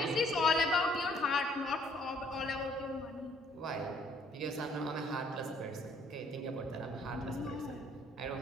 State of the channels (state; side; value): normal; both; correlation 0.63